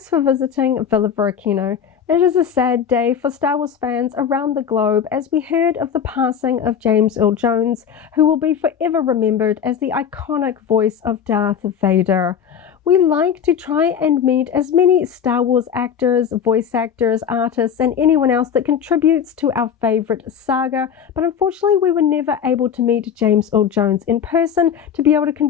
for visiting Varykino. It is a sad day for Star Wars fans around the globe as we heard of the passing of James Earl Jones, who will be forever remembered as the iconic voice of Darth Vader. We like to try and meet as many Star Wars actors, voice actors, artists, and anyone else that contributes to our favorite saga, but unfortunately we were never able to meet James Earl Jones in person to be able to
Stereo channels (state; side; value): quieter; right; 7.8 dB